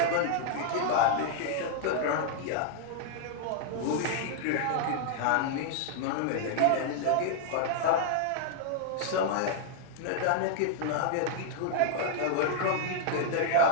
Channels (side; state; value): both; different; correlation -0.01